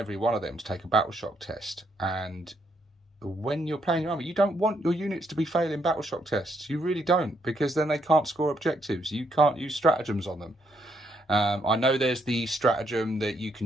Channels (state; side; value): normal; both; correlation 0.74